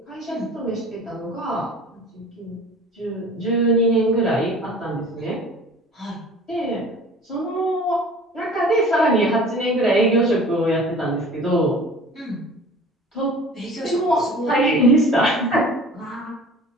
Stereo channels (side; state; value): both; normal; correlation 0.44